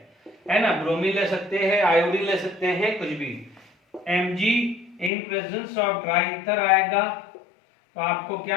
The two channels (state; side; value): drops out; right; at 5.1 s